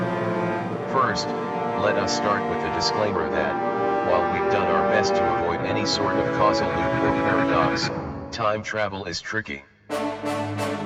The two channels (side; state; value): both; identical; correlation 1.00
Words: First, let us start with the disclaimer that, while we've done our best to avoid any sort of causal loop or paradox, time travel is tricky.